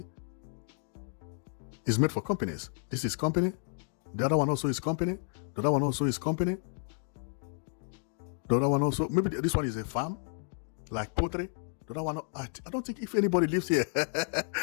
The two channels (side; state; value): right; silent; 57 dB below the other